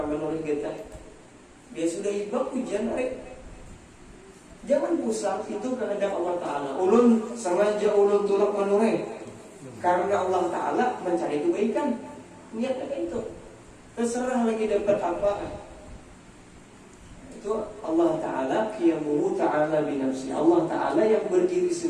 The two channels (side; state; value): both; identical; correlation 1.00